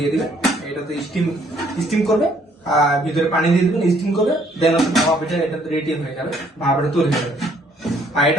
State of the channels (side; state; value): both; normal; correlation 0.64